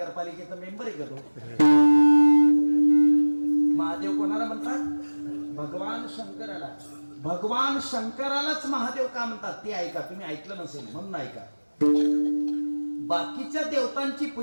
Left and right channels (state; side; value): inverted; both; correlation -1.00